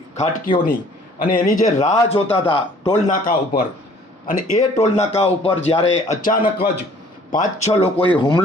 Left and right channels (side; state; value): both; normal; correlation 0.55